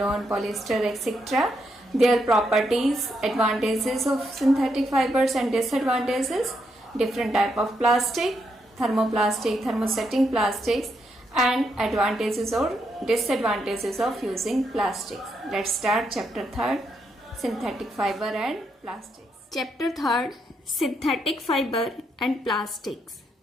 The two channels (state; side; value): normal; both; correlation 0.79